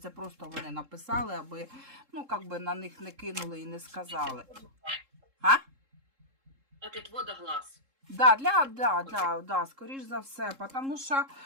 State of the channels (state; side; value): late; left; 3.7 ms